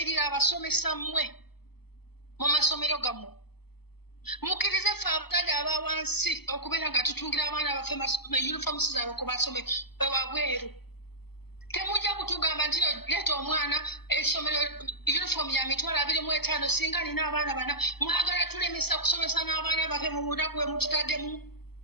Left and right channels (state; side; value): late; right; 0.96 ms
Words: abasomesa mmwe mu masomero gammwe mukkirize ffe abazadde aba wansi okubeera nga tutungira abaana baffe uniforms zaabwe ku masomero wabweru Temujja kutugamba nti leeta omwana essomero uniform ya mitwalo 25 singa nina abaana bana mwagala tulemesa kusomesa n'abaana bafe mu bunaku bwe mututaddemu